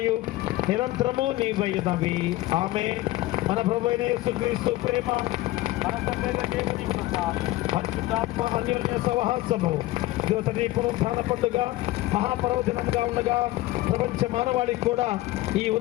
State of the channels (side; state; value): right; quieter; 17.6 dB